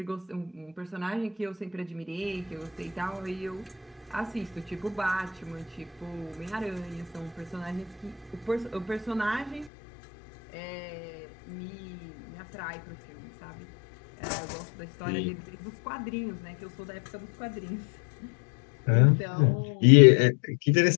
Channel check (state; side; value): drops out; right; at 9.7 s